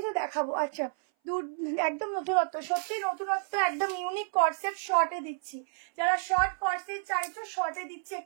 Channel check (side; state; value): left; silent; 57 dB below the other